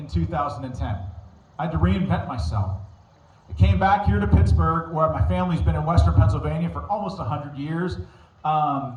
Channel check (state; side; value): identical; both; correlation 1.00